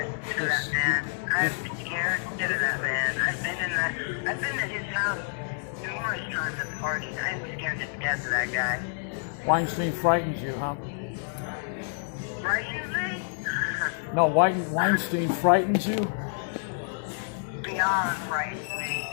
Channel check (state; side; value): silent; right; digital silence